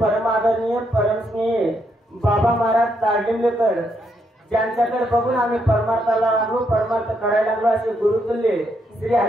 परमस्नेही बाबा महाराज तारलिंगेकर ज्यांच्याकडे बघून आम्ही परमार्थाला लागलो परमार्थ करायला लागलो असे गुरुतुल्य श्री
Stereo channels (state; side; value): normal; both; correlation 0.77